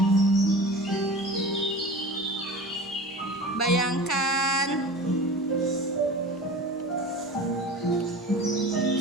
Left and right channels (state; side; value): normal; both; correlation 0.35